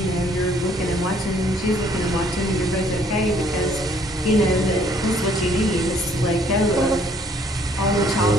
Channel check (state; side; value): normal; both; correlation 0.62